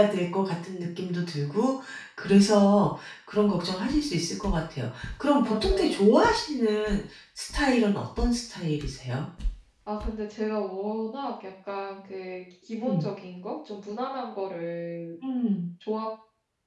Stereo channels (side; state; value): both; identical; correlation 1.00